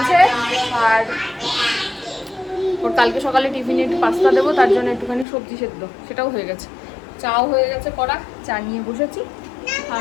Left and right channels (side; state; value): right; drops out; at 5.2 s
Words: আর ওর কালকে সকালে টিফিনে একটু পাস্তা দেবো, তার জন্য একটুখানি সবজি সেদ্ধ, সেটাও হয়ে গেছে। চাও হয়ে গেছে করা, চা নিয়ে বসেছি। আর